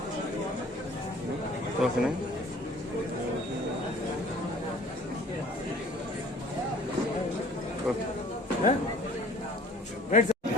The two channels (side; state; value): both; normal; correlation 0.51